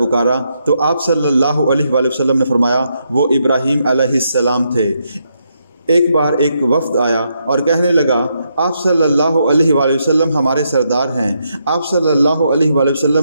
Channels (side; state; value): both; inverted; correlation -0.79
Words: تو آپ صلی اللہ علیہ وآلہ وسلم نے فرمایا وہ ابراہیم علیہ السلام تھے۔ ایک بار ایک وفد آیا اور کہنے لگا آپ صلی اللہ علیہ وآلہ وسلم ہمارے سردار ہیں۔ آپ صلی اللہ علیہ وآلہ